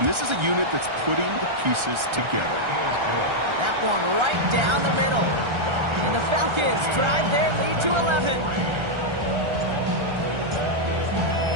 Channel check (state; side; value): late; left; 1.3 ms